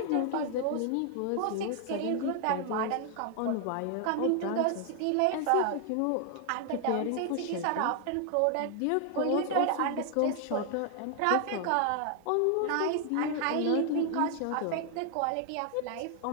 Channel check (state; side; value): different; both; correlation 0.00